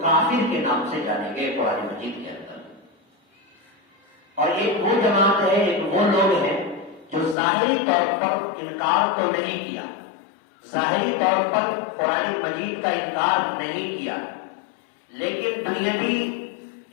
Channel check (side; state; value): right; drops out; at 7.4 s